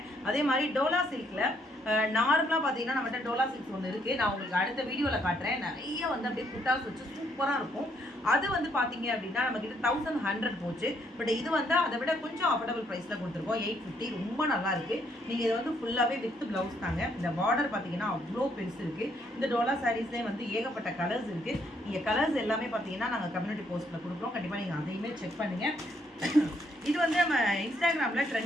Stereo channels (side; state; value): both; normal; correlation 0.71